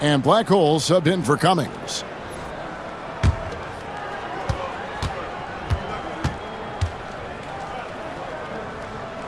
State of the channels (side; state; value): both; identical; correlation 1.00